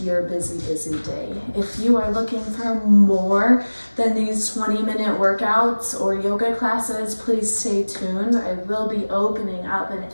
your busy day. If you are looking for more than these 20-minute workouts or yoga classes, please stay tuned. I will be opening up an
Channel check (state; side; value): inverted; both; correlation -1.00